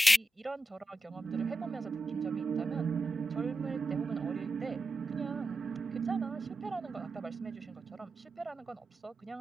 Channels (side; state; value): both; normal; correlation 0.91